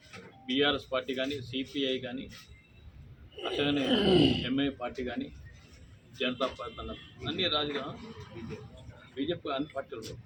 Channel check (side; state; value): both; identical; correlation 1.00